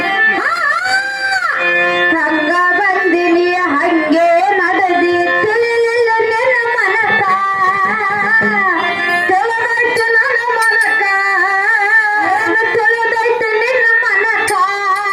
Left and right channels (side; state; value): both; identical; correlation 1.00